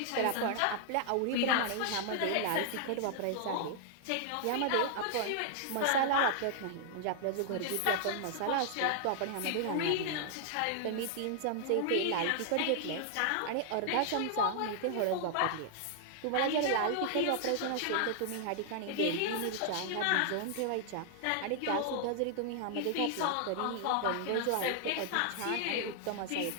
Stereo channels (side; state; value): both; different; correlation -0.01